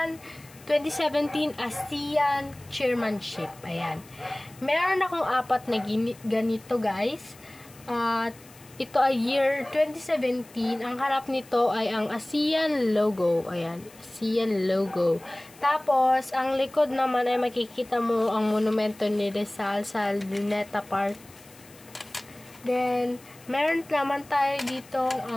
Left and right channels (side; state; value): left; noise; hiss, 23 dB below the sound